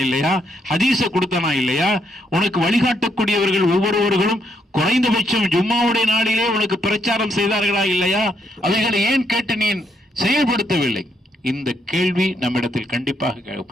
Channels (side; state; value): both; normal; correlation 0.76